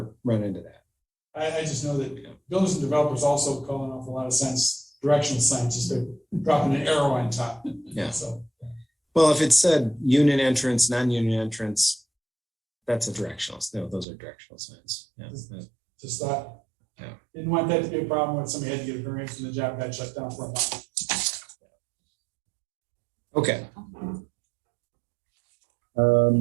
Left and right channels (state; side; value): drops out; left; at 14.1 s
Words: run into that. I just know that builders and developers also call an awful lot of signs, directional signs, just to dropping an arrow on top. Yeah. So, Well, if it said union entrance, non-union entrance, that's a directional. No, those are directional signs. Yeah. just thought, Yeah. didn't want that to be a problem when somebody had to get a variance and the job got shut down for a month. Okay.